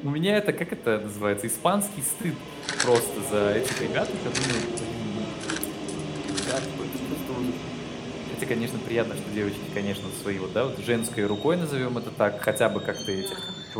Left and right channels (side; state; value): both; identical; correlation 1.00